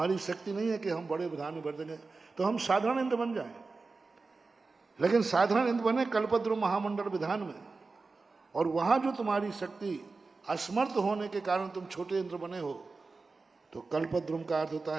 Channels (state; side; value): quieter; left; 4.0 dB